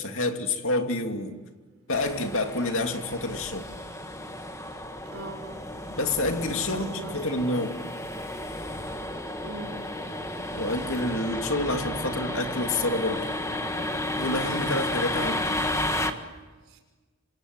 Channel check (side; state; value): both; normal; correlation 0.12